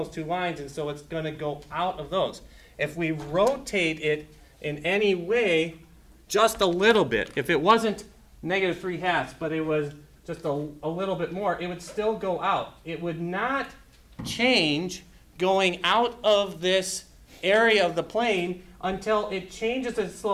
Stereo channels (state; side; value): identical; both; correlation 1.00